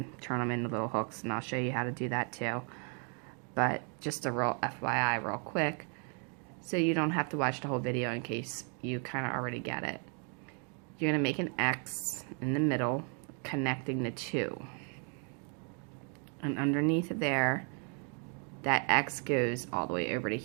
turn them into little hooks, and I'll show you how to do that too. But just a real FYI real quick, so you don't have to watch the whole video in case you kind of already get it. You're going to make an X in the middle, connecting the two. And underneath there, that X goes all the way over to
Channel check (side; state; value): left; quieter; 39.9 dB